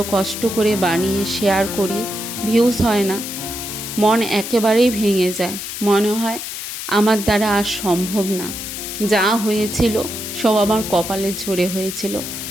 কষ্ট করে বানিয়ে শেয়ার করি, ভিউজ হয় না, মন একেবারেই ভেঙে যায়। মনে হয় আমার দ্বারা আর সম্ভব না। যা হয়েছিল সব আমার কপালের জোরে হয়েছিল,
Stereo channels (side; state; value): left; noise; hiss, 7 dB below the sound